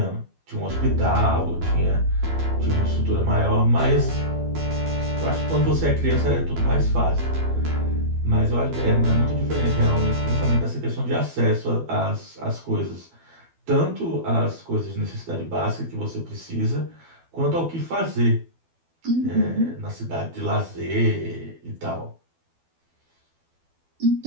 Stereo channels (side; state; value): left; late; 12 ms